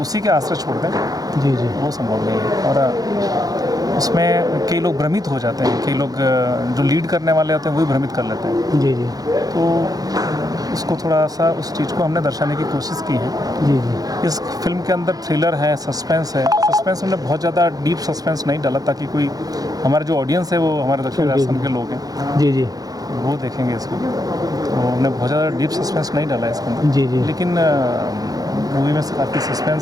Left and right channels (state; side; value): late; left; 0.18 ms